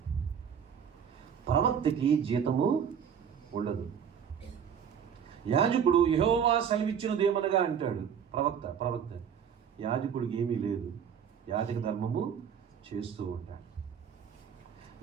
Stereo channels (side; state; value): left; quieter; 7.8 dB